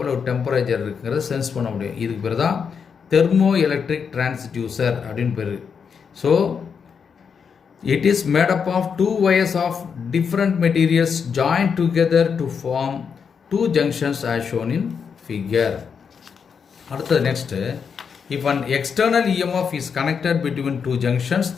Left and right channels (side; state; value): right; quieter; 6.4 dB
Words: டெம்பரேச்சர் இருக்குங்கிறத சென்ஸ் பண்ண முடியும். இதுக்கு பேர் தான் தெர்மோ எலக்ட்ரிக் டிரான்ஸ்டியூசர் அப்படின்னு பேர். So it is made up of two wires of different materials joined together to form two junctions as shown in figure. அடுத்தது next, if an external EMF is connected between two junctions,